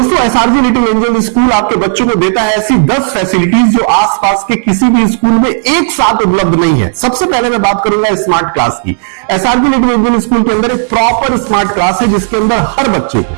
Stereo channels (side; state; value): left; silent; digital silence